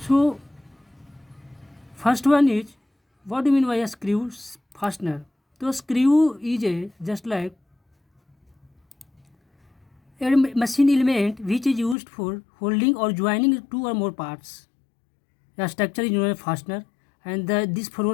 first one is, what do you mean by a screw fastener? So screw is just like a machine element which is used for holding or joining two or more parts. The structure is known as fastener, and this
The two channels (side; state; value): right; drops out; at 12.0 s